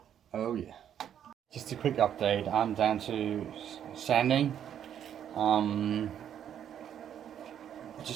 oh yeah. Just a quick update, I'm down to sanding.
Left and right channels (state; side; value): quieter; left; 9.5 dB